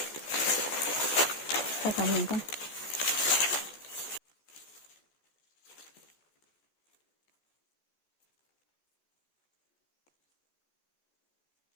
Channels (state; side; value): late; right; 14 ms